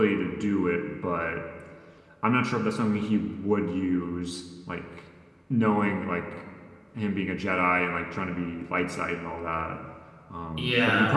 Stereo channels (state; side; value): identical; both; correlation 1.00